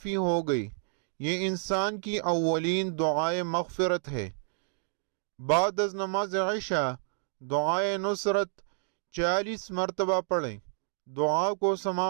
ہو گئی۔ یہ انسان کی اولین دعائے مغفرت ہے۔ بعد از نماز عشاء دعائے نصرت 40 مرتبہ پڑھیں۔ دعا کو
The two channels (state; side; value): silent; left; digital silence